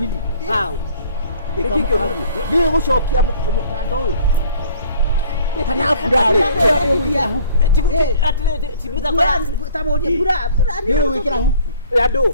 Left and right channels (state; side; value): inverted; both; correlation -0.53